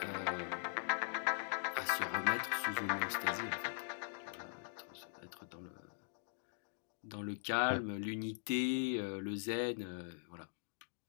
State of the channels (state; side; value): silent; right; digital silence